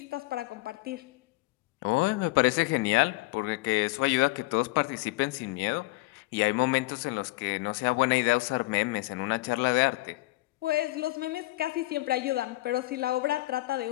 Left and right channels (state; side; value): quieter; right; 20.6 dB